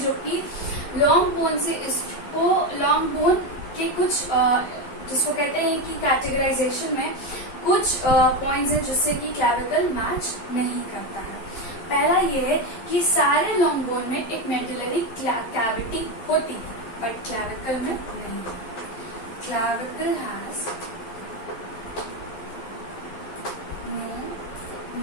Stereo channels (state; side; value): late; right; 11 ms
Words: कि लॉन्ग बोन से इसको लॉन्ग बोन के कुछ जिसको कहते हैं कि कैटेगराइजेशन में कुछ पॉइंट्स हैं जिससे कि क्लैविकल मैच नहीं करता है। पहला ये है कि सारे लॉन्ग बोन में एक मेडुलरी कैविटी होती है बट क्लैविकल में नहीं। Clavicle has no